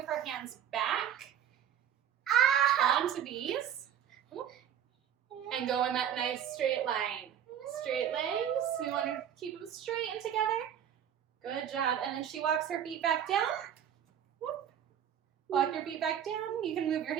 her hands back onto these and go in that nice straight line. Straight legs. We want to keep them straight and together. Good job. And then she walks her feet back down. Walk your feet back down. You can move your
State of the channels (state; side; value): quieter; left; 9.5 dB